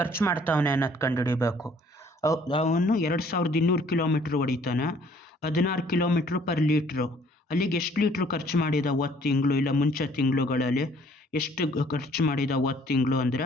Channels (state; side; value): normal; both; correlation 0.59